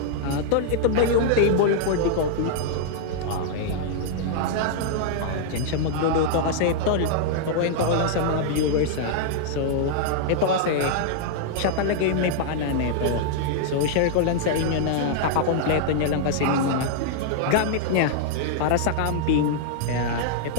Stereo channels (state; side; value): different; both; correlation -0.01